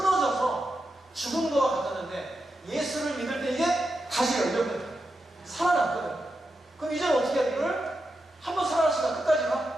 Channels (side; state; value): both; normal; correlation 0.88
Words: 죽은 거와 같았는데 예수를 믿을 때 이게 다시 열렸거든. 살아났거든. 그럼 이제는 어떻게 해야 돼? 이걸 한번 살아났으니까 끝까지